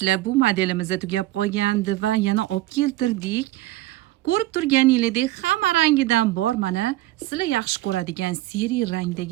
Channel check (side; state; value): left; quieter; 16.3 dB